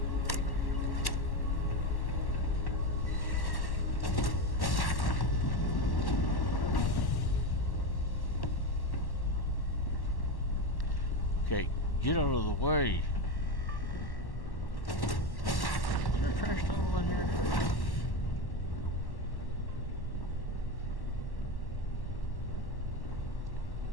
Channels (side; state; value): right; late; 1.1 ms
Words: Okay, get out of the way. Is there a trash tunnel in here?